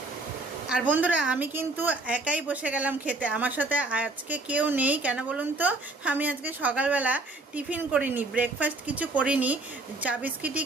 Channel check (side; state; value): left; quieter; 3.1 dB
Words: আর বন্ধুরা আমি কিন্তু একাই বসে গেলাম খেতে, আমার সাথে আজকে কেউ নেই। কেন বলুন তো, আমি আজকে সকালবেলা টিফিন করিনি, ব্রেকফাস্ট কিছু করিনি, চা বিস্কিটই